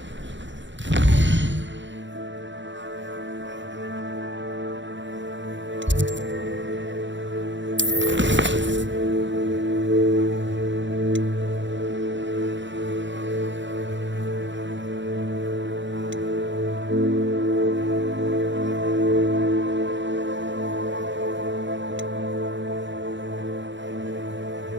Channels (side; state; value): left; late; 0.54 ms